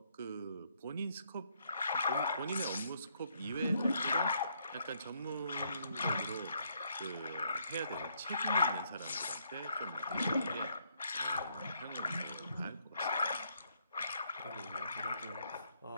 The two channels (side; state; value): both; inverted; correlation -0.72